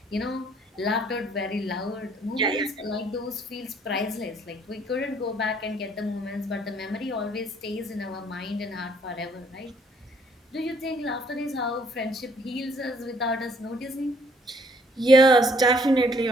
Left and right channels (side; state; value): both; normal; correlation 0.64